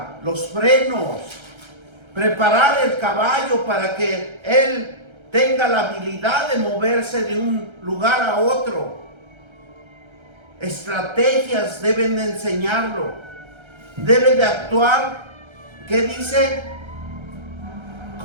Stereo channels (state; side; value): late; left; 1.3 ms